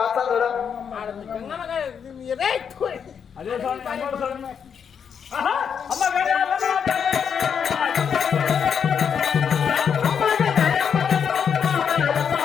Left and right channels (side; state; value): right; quieter; 7.2 dB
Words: అదే స్వామి అమ్మోరు స్వామి. అమ్మ